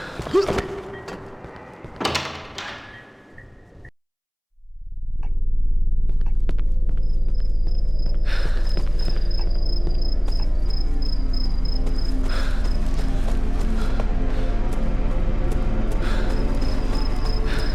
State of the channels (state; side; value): identical; both; correlation 1.00